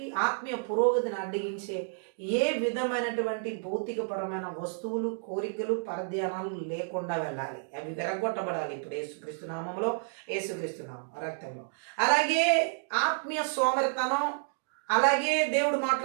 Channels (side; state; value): left; silent; digital silence